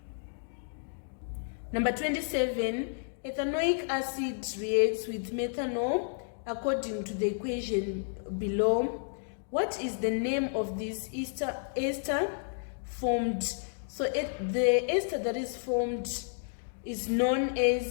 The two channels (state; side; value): silent; right; digital silence